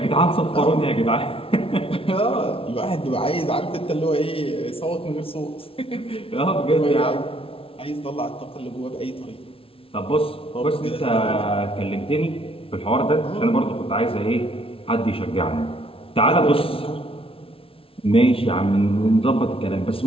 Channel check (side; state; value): right; late; 0.26 ms